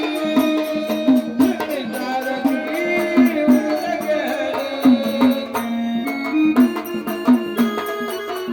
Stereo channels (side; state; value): both; identical; correlation 1.00